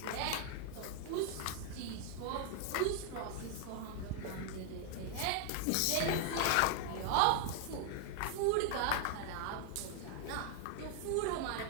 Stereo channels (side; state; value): both; different; correlation 0.00